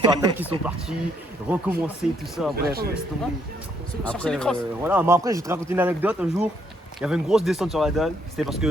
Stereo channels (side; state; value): both; normal; correlation 0.72